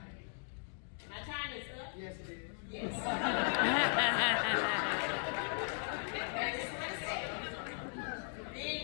My time is up? Yes, it is. Yes.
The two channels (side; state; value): right; silent; 53 dB below the other